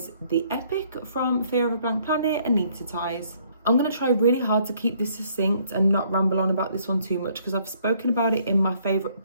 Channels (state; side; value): inverted; both; correlation -0.65